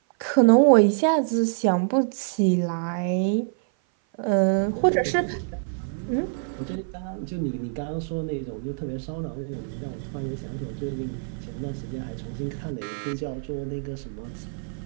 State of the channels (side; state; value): left; silent; 56 dB below the other